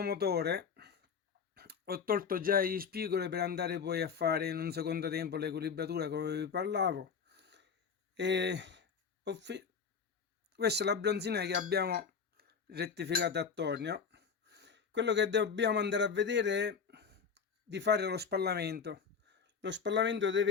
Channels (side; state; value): right; quieter; 6.1 dB